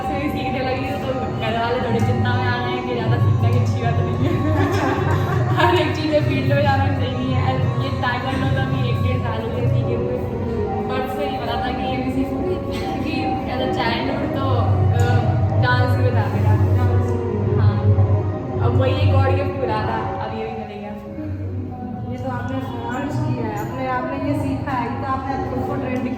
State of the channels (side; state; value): both; identical; correlation 1.00